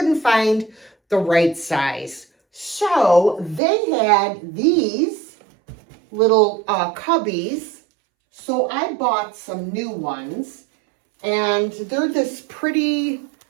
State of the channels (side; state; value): left; drops out; at 3.6 s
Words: find the right size. So they had these little cubbies. So I bought some new ones and they're this pretty